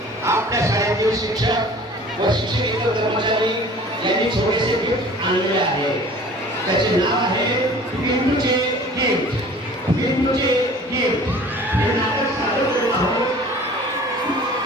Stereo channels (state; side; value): normal; both; correlation 0.46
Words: आपल्या शाळेतील शिक्षक व शिक्षकेतर कर्मचारी यांनी छोटेसे गिफ्ट आणलेले आहे. त्याचे नाव आहे पिंटूचे गिफ्ट. पिंटूचे गिफ्ट हे नाटक सादर करत आहोत.